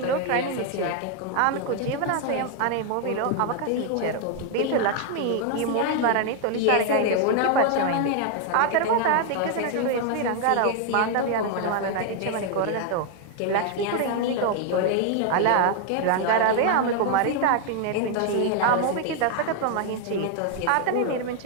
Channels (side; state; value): both; different; correlation 0.00